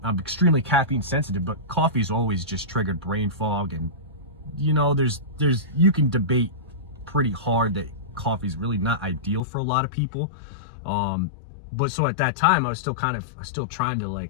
extremely caffeine sensitive, but coffee's always just triggered brain fog. And, you know, you can debate pretty hard that coffee's really not ideal for a lot of people. But so at that time, I was still trying to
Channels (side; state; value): right; drops out; at 9.4 s